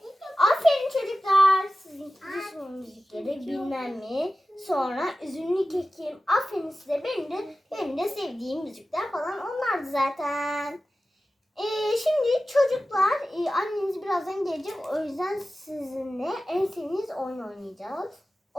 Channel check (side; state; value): both; normal; correlation 0.95